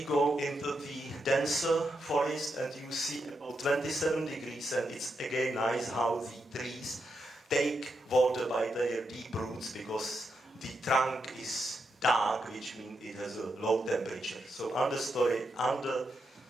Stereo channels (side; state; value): both; normal; correlation 0.84